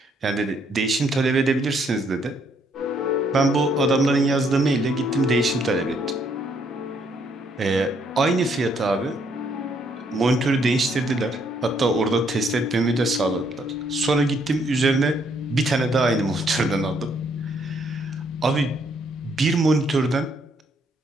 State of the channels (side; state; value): both; normal; correlation 0.70